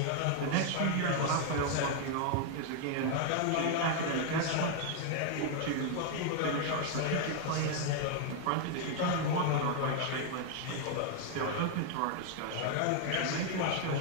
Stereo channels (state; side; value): different; both; correlation 0.00